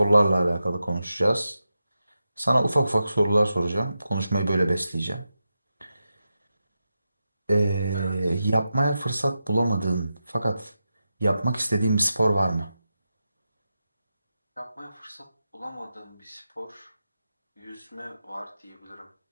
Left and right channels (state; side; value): inverted; both; correlation -0.90